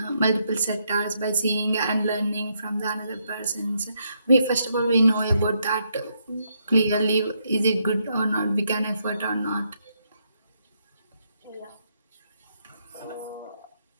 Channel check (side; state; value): both; inverted; correlation -0.77